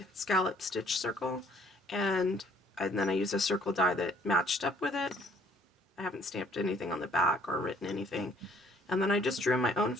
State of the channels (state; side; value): normal; both; correlation 0.60